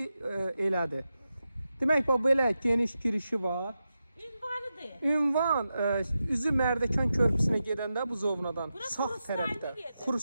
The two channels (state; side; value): inverted; both; correlation -0.90